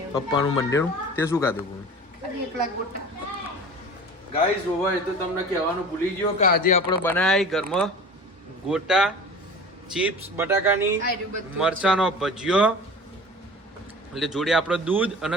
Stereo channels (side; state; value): both; normal; correlation 0.39